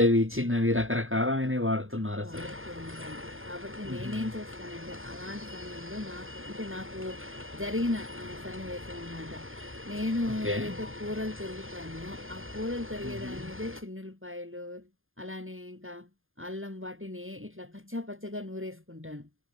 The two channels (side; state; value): left; late; 0.60 ms